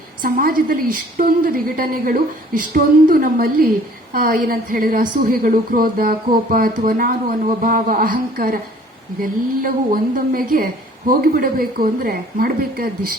ಸಮಾಜದಲ್ಲಿ ಇಷ್ಟೊಂದು ವಿಘಟನೆಗಳು, ಇಷ್ಟೊಂದು ನಮ್ಮಲ್ಲಿ ಏನಂತ ಹೇಳಿದ್ರೆ ಅಸೂಹೆಗಳು, ಕ್ರೋಧ, ಕೋಪ ಅಥವಾ ನಾನು ಅನ್ನುವ ಭಾವ, ಅಹಂಕಾರ, ಇದೆಲ್ಲವೂ ಒಂದೊಮ್ಮೆಗೆ ಹೋಗಿಬಿಡಬೇಕು ಅಂದ್ರೆ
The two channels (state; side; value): normal; both; correlation 0.54